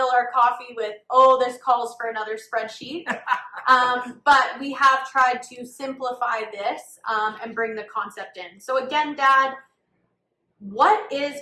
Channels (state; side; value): identical; both; correlation 1.00